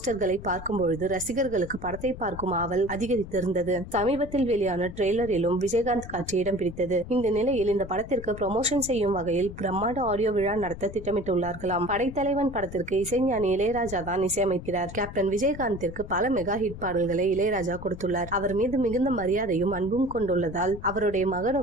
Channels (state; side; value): noise; left; rumble, 12 dB below the sound